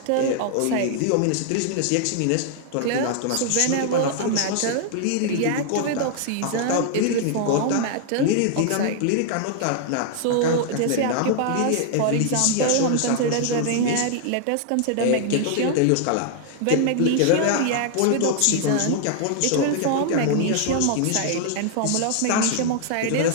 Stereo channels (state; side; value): different; both; correlation 0.00